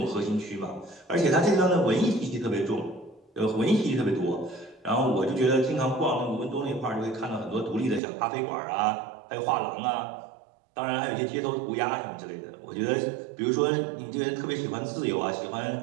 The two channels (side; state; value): left; drops out; at 8.0 s